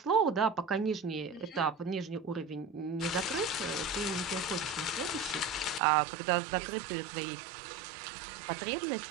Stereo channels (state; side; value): drops out; left; at 5.8 s